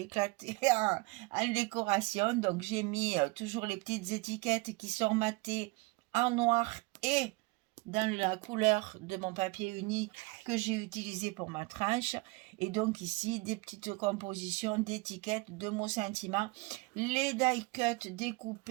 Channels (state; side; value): quieter; left; 25.6 dB